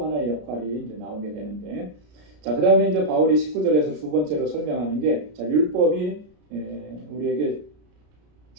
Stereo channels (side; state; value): left; late; 33 ms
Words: 하나의 역할이 이제 나오게 되는데, 자, 그 다음에 이제 바울이 19절에서 두 번째로 설명하는 게, 자, 율법이 우리에게